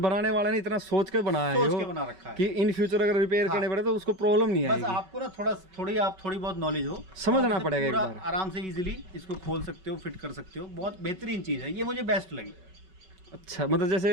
बनाने वाले ने इतना सोच के बनाया है सोच के बना रखा है कि इन फ्यूचर अगर रिपेयर करने पड़े तो उसको प्रॉब्लम नहीं बस आएगी। आपको ना थोड़ी बहुत नॉलेज हो, समझना पड़ेगा एक पूरा बार। आराम से इजीली इसको खोल सकते हो, फिट कर सकते हो। बहुत बेहतरीन चीज है ये, मुझे बेस्ट लगी। अच्छा मतलब जैसे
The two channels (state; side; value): late; left; 5.3 ms